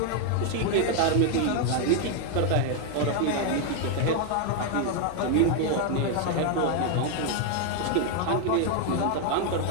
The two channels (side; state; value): both; different; correlation 0.01